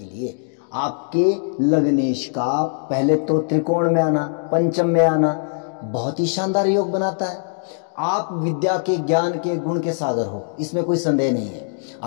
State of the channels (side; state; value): right; silent; digital silence